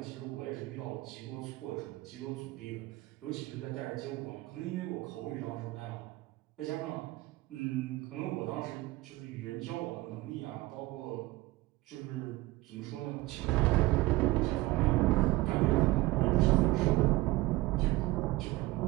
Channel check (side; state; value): left; quieter; 19.4 dB